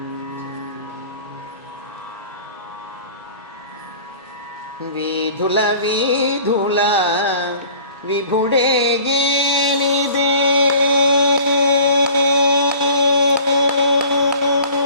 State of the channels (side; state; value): both; inverted; correlation -0.47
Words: వీధుల వీధుల విభుడేగేనిదే